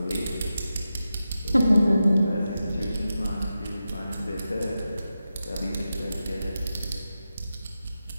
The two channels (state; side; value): inverted; both; correlation -0.90